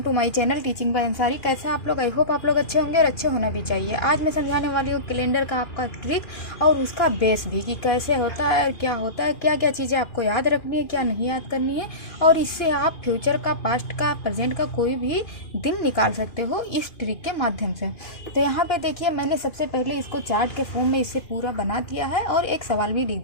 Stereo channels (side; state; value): right; late; 2.4 ms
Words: to my channel teaching by Ansari. कैसे आप लोग? आई होप आप लोग अच्छे होंगे और अच्छे होना भी चाहिए। आज मैं समझाने वाली हूँ कैलेंडर का आपका ट्रिक और उसका बेस भी कि कैसे होता है, क्या होता है, क्या क्या चीज़ें आपको याद रखनी है, क्या नहीं याद करनी है, और इससे आप फ्यूचर का, पास्ट का, प्रेजेंट का कोई भी दिन निकाल सकते हो इस ट्रिक के माध्यम से। तो यहाँ पे देखिए, मैंने सबसे पहले इसको चार्ट के फॉर्म में इसे पूरा बना दिया है और एक सवाल भी लिख